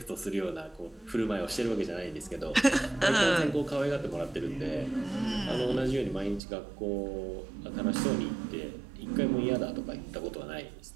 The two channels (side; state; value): left; drops out; at 6.4 s